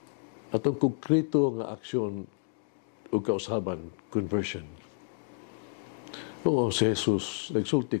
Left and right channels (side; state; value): right; silent; digital silence